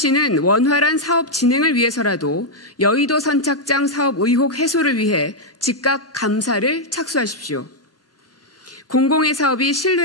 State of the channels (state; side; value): normal; both; correlation -0.02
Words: 원활한 사업 진행을 위해서라도 여의도 선착장 사업 의혹 해소를 위해 즉각 감사를 착수하십시오. 공공의 사업이